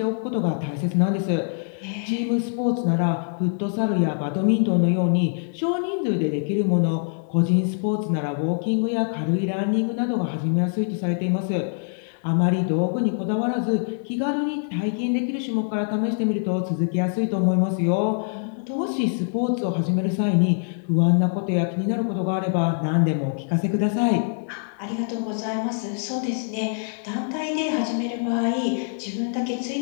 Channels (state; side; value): silent; right; digital silence